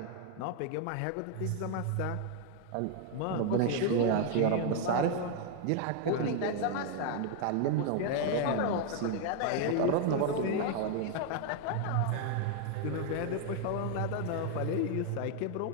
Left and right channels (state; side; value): different; both; correlation 0.00